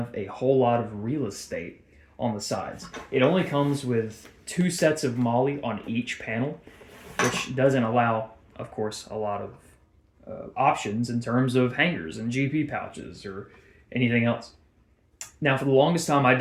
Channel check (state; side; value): identical; both; correlation 1.00